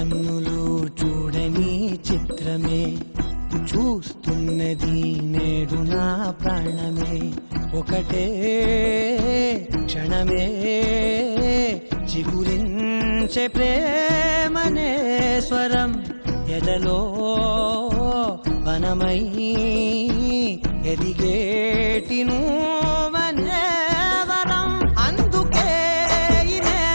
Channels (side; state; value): both; inverted; correlation -1.00